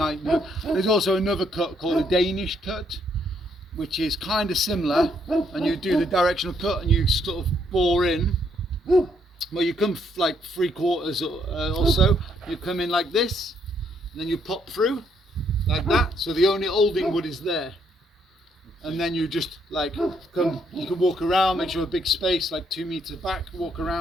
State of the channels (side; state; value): both; normal; correlation 0.72